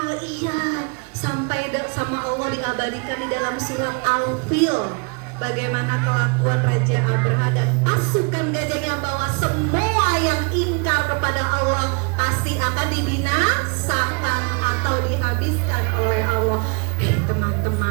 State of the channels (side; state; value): left; quieter; 33.1 dB